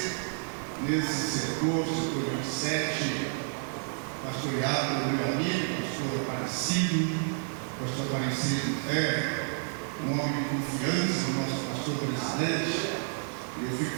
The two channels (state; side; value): silent; left; 58 dB below the other